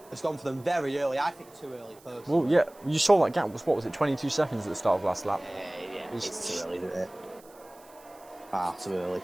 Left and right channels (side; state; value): right; noise; hiss, 26 dB below the sound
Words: has gone for them very early. I think too early, personally. Well, yeah, you saw that gap was, what was it, 22 seconds at the start of last lap? Yeah, it's too early, isn't it? Far too early